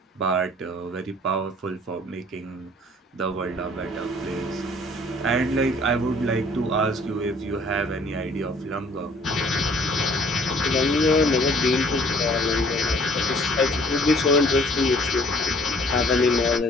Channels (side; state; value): both; normal; correlation 0.56